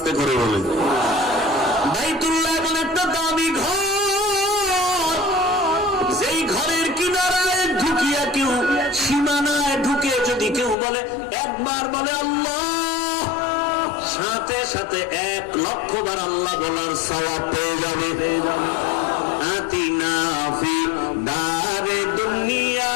করে বলেন। বাইতুল্লাহ এমন একটা দামি ঘর, যেই ঘরের কিনারায় ঢুকিয়া কেউ, সীমানায় ঢুকে যদি কেউ বলে, একবার বলে আল্লাহ, সাথে সাথে 1,00,000 বার আল্লাহ বলার সওয়াব পেয়ে যাবে। আতিনা ফি দারে দুনিয়া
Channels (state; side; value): drops out; right; at 10.8 s